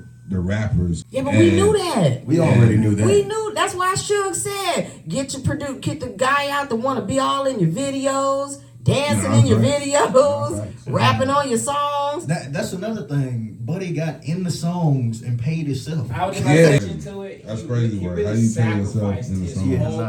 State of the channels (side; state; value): both; identical; correlation 1.00